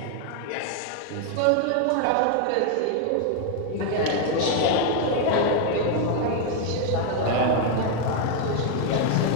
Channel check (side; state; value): both; different; correlation 0.00